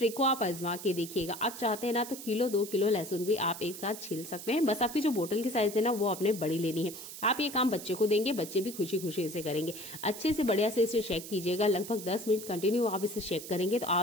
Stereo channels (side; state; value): right; noise; hiss, 11 dB below the sound